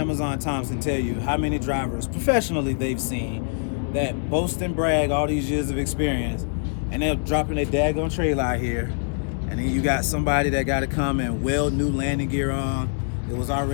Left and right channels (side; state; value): right; silent; digital silence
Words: Times can tell you how many drivers professionally they've seen that boast and brag all these years of experience, and they're dropping their daggone trailer out here, and then you got somebody that got to come and weld new landing gear on. It was